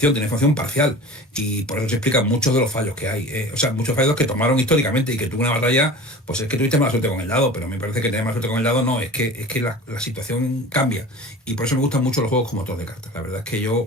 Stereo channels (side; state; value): both; normal; correlation 0.38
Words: tiene información parcial. Y por eso se explican muchos de los fallos que hay. O sea, muchos fallos que tomaron históricamente y que tuvo una batalla, pues es que tuviste mala suerte con el dado, pero me parece que tener mala suerte con el dado no, es que la situación cambia. Y por eso me gustan mucho los juegos como motor de cartas. La verdad es que